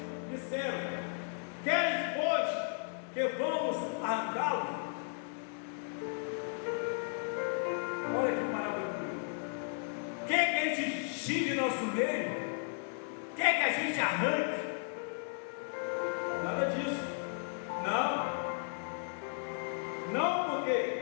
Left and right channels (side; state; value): right; silent; 54 dB below the other